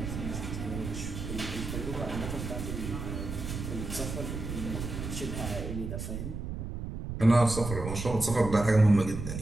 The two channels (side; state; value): right; noise; rumble, 6 dB below the sound